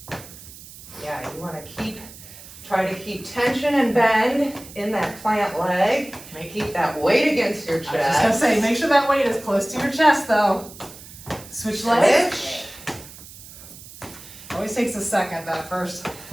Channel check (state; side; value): noise; right; hiss, 17 dB below the sound